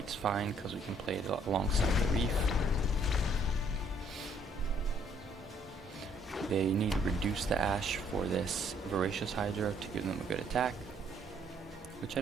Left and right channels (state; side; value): normal; both; correlation 0.65